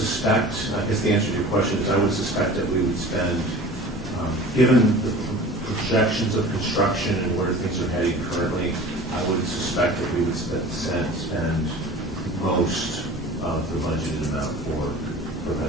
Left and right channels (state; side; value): normal; both; correlation 0.40